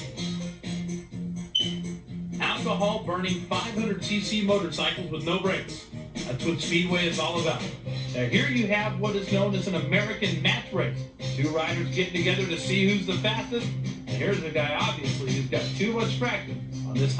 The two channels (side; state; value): both; identical; correlation 1.00